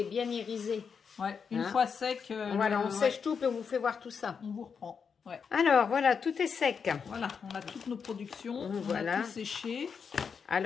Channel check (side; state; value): right; quieter; 6.2 dB